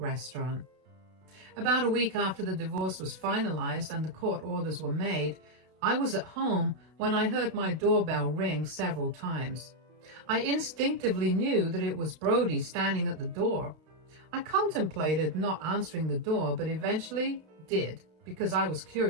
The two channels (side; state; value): left; late; 32 ms